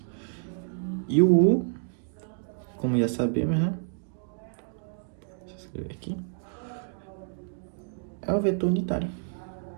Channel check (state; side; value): silent; left; digital silence